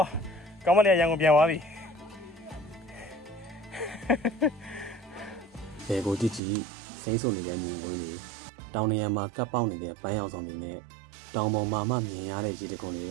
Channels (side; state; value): left; drops out; at 6.4 s